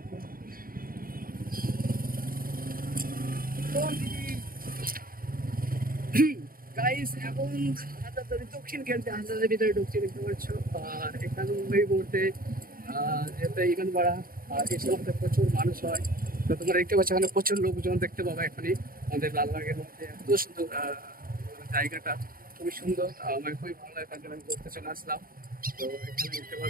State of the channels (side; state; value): left; late; 0.42 ms